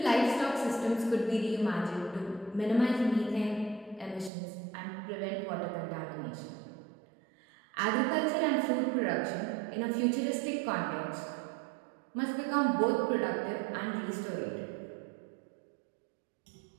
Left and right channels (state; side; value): drops out; left; at 4.3 s